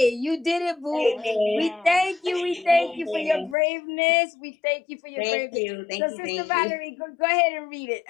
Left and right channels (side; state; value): right; drops out; at 3.6 s